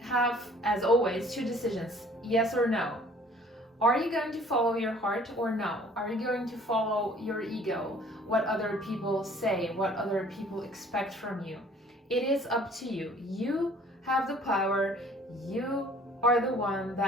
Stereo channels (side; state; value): both; normal; correlation 0.54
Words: as always, two decisions: yes or no. Are you going to follow your heart or no? Are you going to follow your ego, what other people say, what other people expect from you? It is up to you. You have the power. You are the one